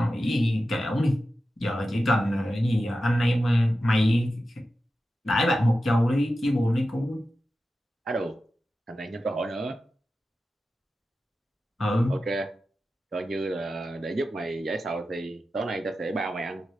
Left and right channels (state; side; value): normal; both; correlation 0.92